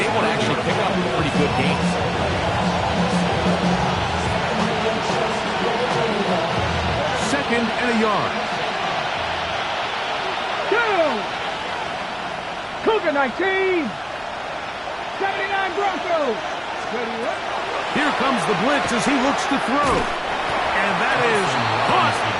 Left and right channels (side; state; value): both; identical; correlation 1.00